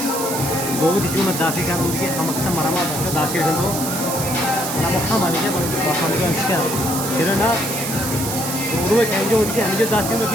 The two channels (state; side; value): noise; right; hiss, 5 dB below the sound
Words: बहुत ही जो दासी का उनके हम अक्सर मरामा बच्चों दासी के तो ना मुख्य मानी है बड़े पसंद का विषय फिर ना उर्वे कहीं जो उनकी हम जो दासी में